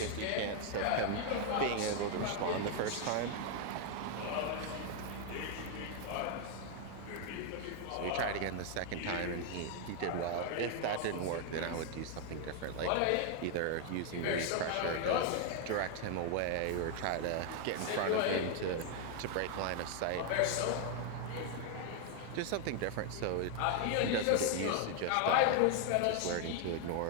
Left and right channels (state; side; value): different; both; correlation 0.00